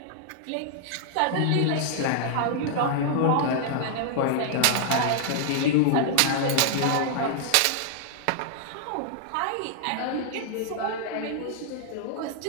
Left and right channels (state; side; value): different; both; correlation -0.01